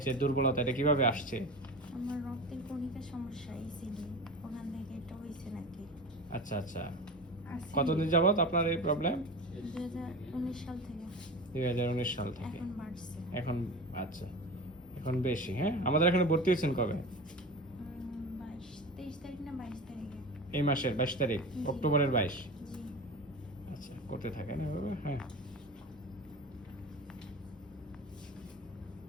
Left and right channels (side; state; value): both; normal; correlation 0.30